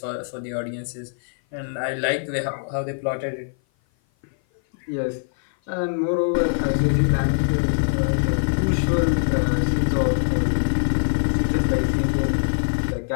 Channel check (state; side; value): silent; right; 56 dB below the other